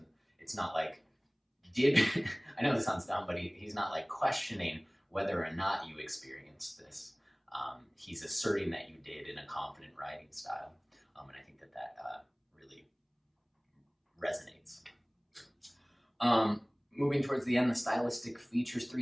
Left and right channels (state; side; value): identical; both; correlation 1.00